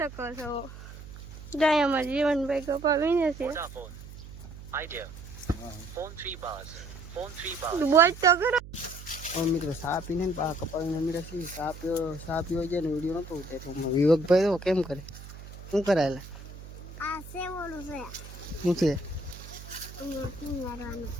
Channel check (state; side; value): noise; right; hum, 14 dB below the sound